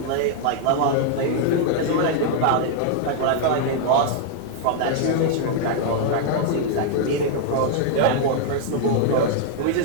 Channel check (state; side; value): different; both; correlation 0.00